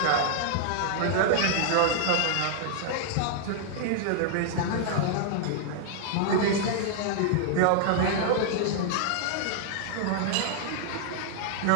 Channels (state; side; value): different; both; correlation -0.01